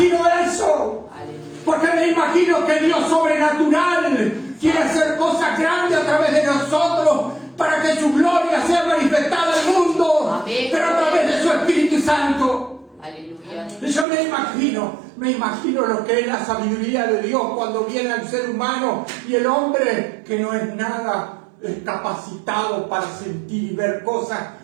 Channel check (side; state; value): left; drops out; at 14.1 s